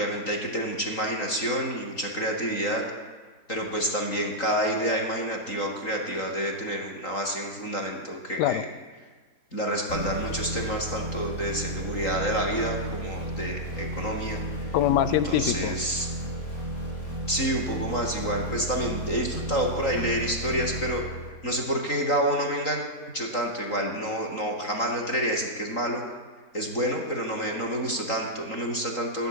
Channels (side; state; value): right; late; 3.8 ms